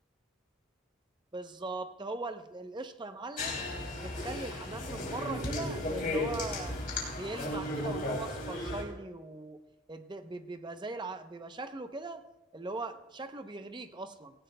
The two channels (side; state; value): both; normal; correlation 0.45